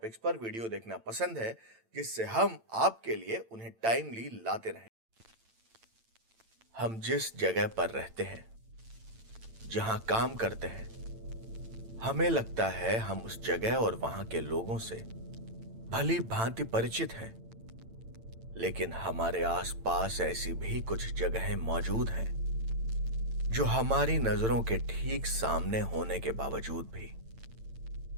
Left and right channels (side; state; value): left; late; 8.9 ms